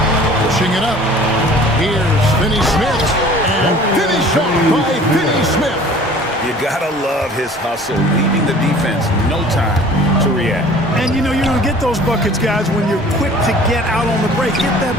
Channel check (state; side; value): normal; both; correlation 0.48